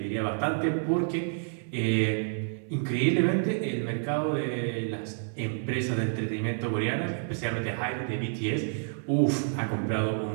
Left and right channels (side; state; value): left; silent; digital silence